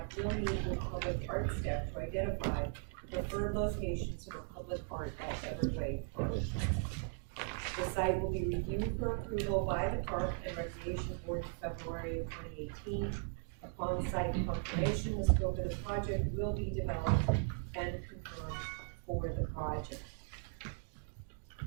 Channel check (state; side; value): silent; left; 52 dB below the other